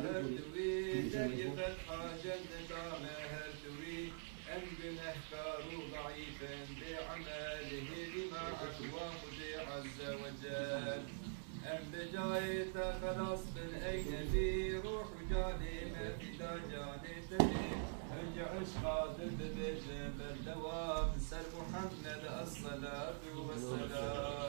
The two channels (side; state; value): left; silent; digital silence